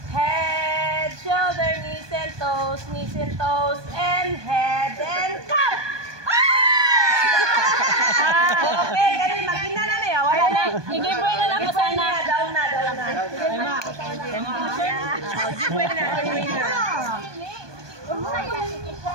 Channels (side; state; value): left; late; 1.2 ms